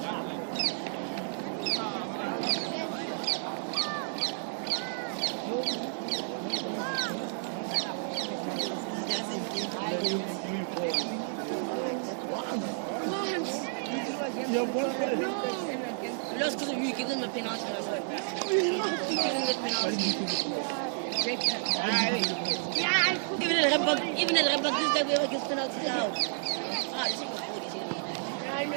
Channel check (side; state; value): left; silent; digital silence